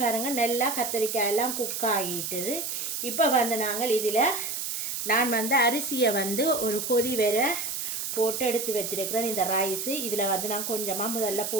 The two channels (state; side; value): noise; right; hiss, 3 dB below the sound